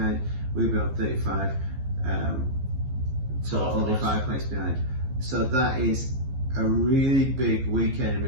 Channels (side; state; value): left; late; 15 ms